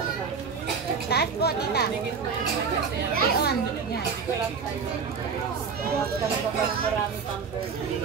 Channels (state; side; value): quieter; left; 5.7 dB